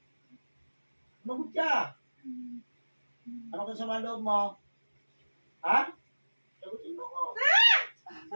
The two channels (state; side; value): inverted; both; correlation -1.00